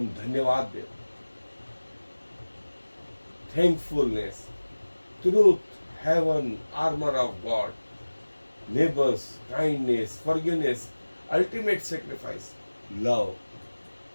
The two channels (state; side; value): inverted; both; correlation -1.00